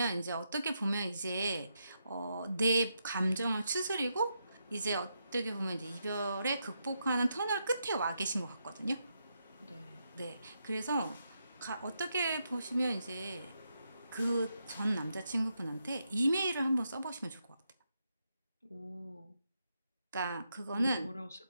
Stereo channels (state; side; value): inverted; both; correlation -0.82